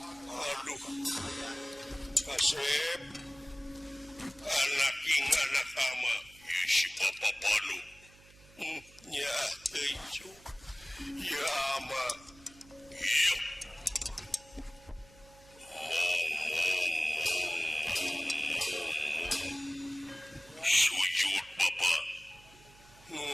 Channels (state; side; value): noise; right; hum, 24 dB below the sound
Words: Aduh Kasep anak king anak ama si bapak panu nya teuju ya ama iya mong sujud bapak